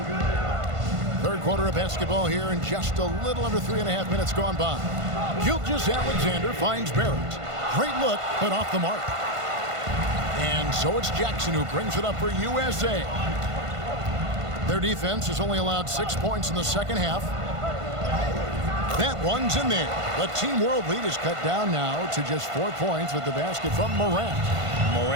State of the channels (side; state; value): left; late; 1.5 ms